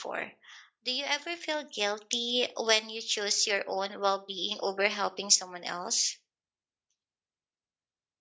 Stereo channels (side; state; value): both; identical; correlation 1.00